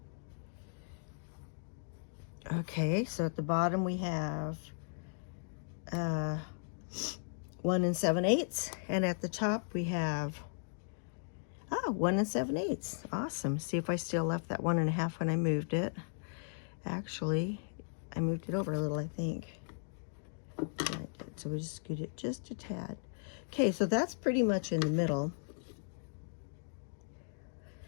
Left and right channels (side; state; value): right; silent; digital silence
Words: Okay, so at the bottom we have 1 7/8, and at the top we have 1 7/8. Awesome. See if I still left that 1.5 when I moved it. Actually, I moved it over a little, I think. Yeah, I did. So we just scoot it just a tad. Okay, so that's pretty much in the middle.